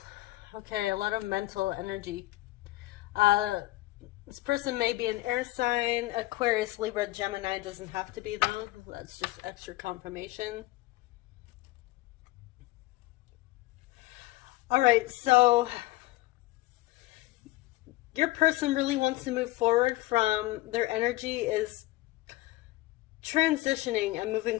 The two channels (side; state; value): right; quieter; 18.9 dB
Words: Okay, a lot of mental energy. This person may be an air sign. Aquarius, Libra, Gemini doesn't have to be though. That's just extra confirmation. All right, so your person really wants to move forward from their energy is transitioning and moving